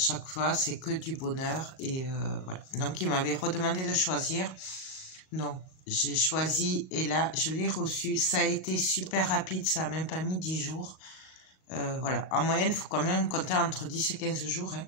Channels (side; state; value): right; late; 38 ms